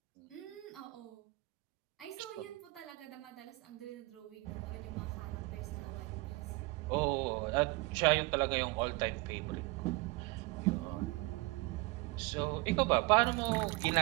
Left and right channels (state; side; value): quieter; left; 23.8 dB